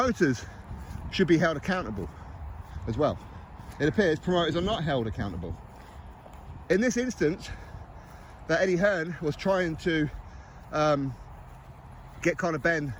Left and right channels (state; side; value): identical; both; correlation 1.00